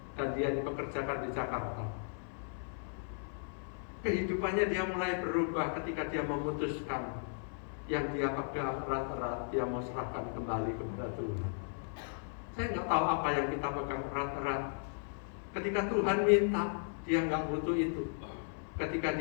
dan dia dipekerjakan di Jakarta. Kehidupannya dia mulai berubah ketika dia memutuskan yang dia pegang erat-erat, dia mau serahkan kembali kepada Tuhan. Saya nggak tahu apa yang kita pegang erat-erat. Ketika Tuhan minta, dia nggak butuh itu. Ketika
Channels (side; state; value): right; silent; 54 dB below the other